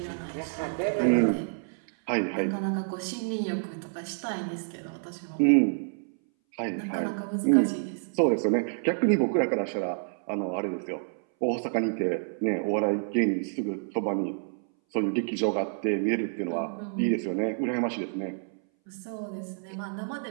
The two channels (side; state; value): left; silent; 59 dB below the other